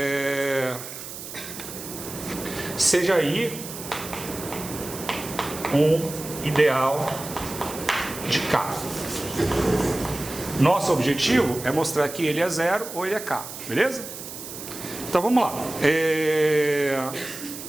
seja I um ideal de K. Nosso objetivo é mostrar que ele é 0 ou ele é K. Beleza? Então vamos lá.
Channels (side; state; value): right; noise; hiss, 11 dB below the sound